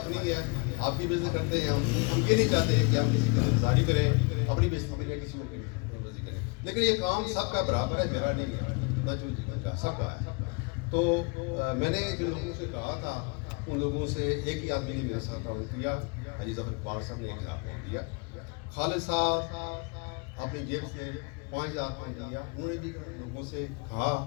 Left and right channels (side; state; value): right; quieter; 31.8 dB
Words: ہے, آپ کی بےزتی کرتے ہیں. ہم یہ نہیں چاہتے کہ ہم کسی کی گزاری کریں, اپنی بےزتی کریں, کسی اور کی کریں. لیکن یہ کام سب کا برابر ہے, میرا نہیں ہے, نہ جو جیون کا, سب کا ہے. تو میں نے جن لوگوں سے کہا تھا ان لوگوں سے ایک ہی آدمی نے میرے ساتھ تعاون کیا, حاجی ظفر اقبال صاحب نے 1,000 پاؤنڈ دیا. خالد صاحب اپنی جیب سے 5,000 پاؤنڈ دیا. انہوں نے بھی لوگوں سے کہا,